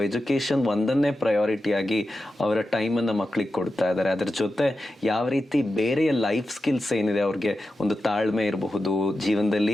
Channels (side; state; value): both; normal; correlation 0.91